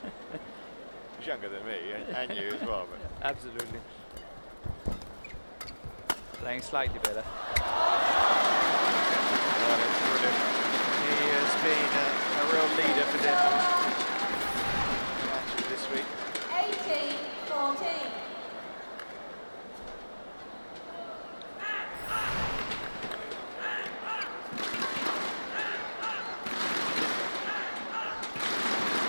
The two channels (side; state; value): both; inverted; correlation -1.00